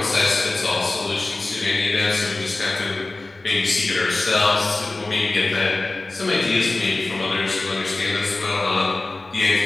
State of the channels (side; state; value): right; quieter; 3.1 dB